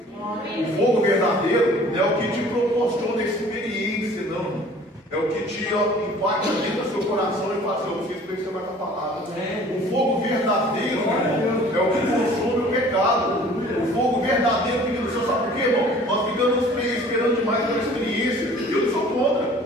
O fogo verdadeiro não é o que te proporciona experiência, não. É o que te impacta dentro do seu coração e fala assim, eu preciso pensar mais na palavra. O fogo verdadeiro, irmão, é o que consome o pecado. O fogo verdadeiro fica no céu, sabe por quê, irmão? Nós ficamos esperando demais pela experiência. Eu não sou contra.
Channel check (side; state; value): both; normal; correlation 0.49